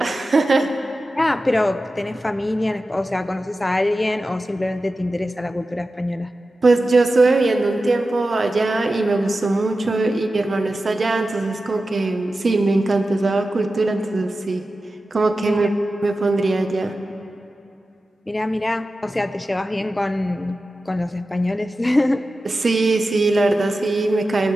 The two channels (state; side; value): normal; both; correlation 0.93